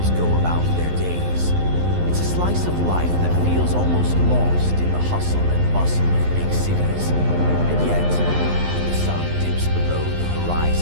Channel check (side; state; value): left; late; 11 ms